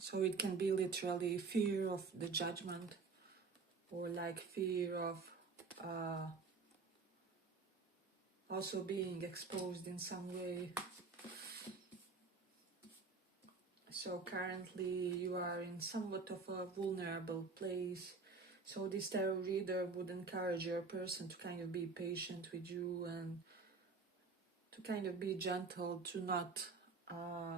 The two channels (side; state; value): left; quieter; 4.4 dB